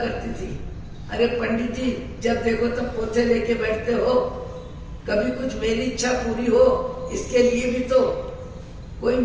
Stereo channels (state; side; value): identical; both; correlation 1.00